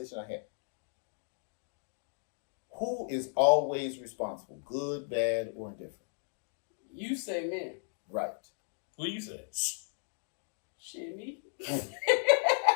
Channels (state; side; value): silent; right; digital silence